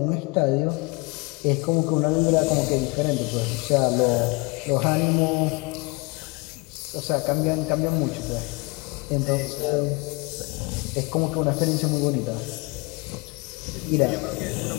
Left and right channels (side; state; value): right; quieter; 27.2 dB